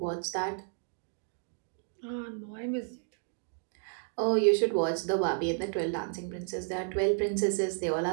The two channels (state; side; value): silent; left; digital silence